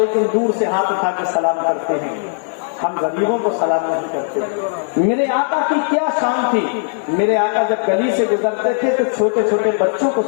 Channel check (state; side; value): silent; right; 67 dB below the other